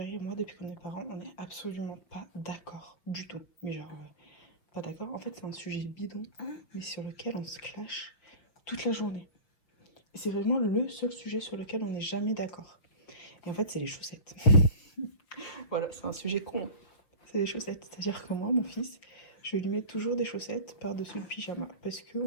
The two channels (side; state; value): right; late; 6.1 ms